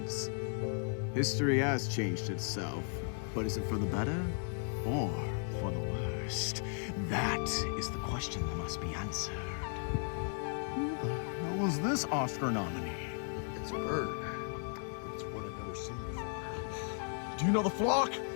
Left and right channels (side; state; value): right; silent; 54 dB below the other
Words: History has changed itself, but is it for the better or for the worst? That is the question that must be answered. Who the hell was this Oscar nominee? It's a bird. It's one I've never seen before. Do you know the flock?